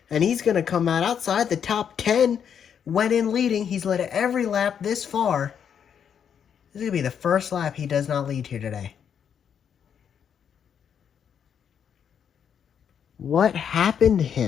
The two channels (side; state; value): right; quieter; 8.0 dB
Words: And he's going to come out outside the top 10. Went in leading. He's led every lap this far. This is going to be the first lap he does not lead here today. What happened to